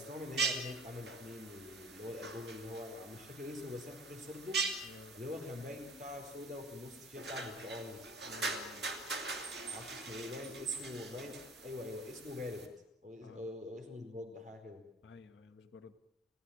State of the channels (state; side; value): normal; both; correlation 0.45